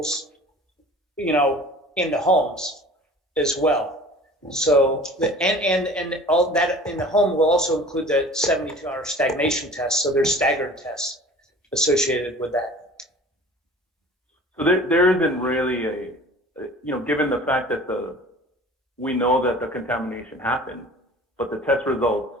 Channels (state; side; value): normal; both; correlation 0.45